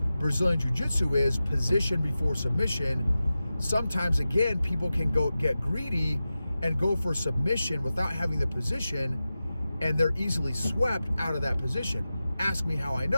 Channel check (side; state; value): both; inverted; correlation -0.94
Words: Brazilian Jiu-Jitsu is position before submission. Sometimes, again, people can get greedy and go for submission without having the position, and they're easily swept out of that position. Ask me how I